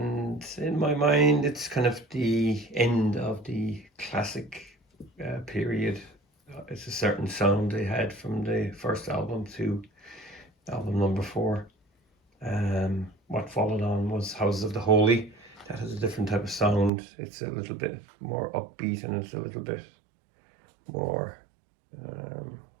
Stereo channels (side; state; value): left; drops out; at 16.9 s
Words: in my mind, it's kind of the end of the classic period. It's a certain sound they had from the first album to album number 4. What followed on was Houses of the Holy. That has a different type of sound. It's a little bit more upbeat and it's a little bit more,